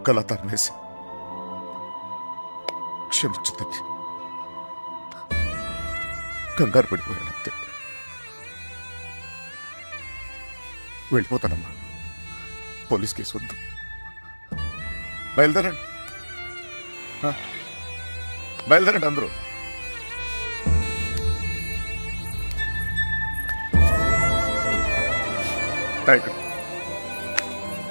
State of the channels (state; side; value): inverted; both; correlation -1.00